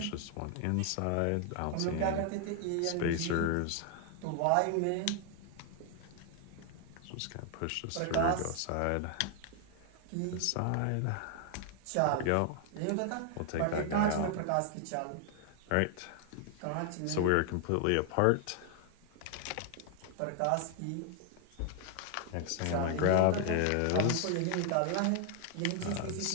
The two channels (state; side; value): different; both; correlation 0.00